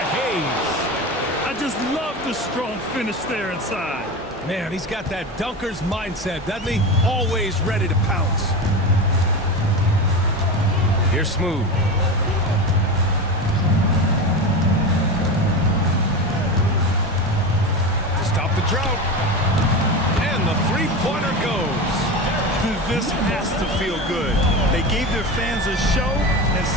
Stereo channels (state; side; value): normal; both; correlation 0.24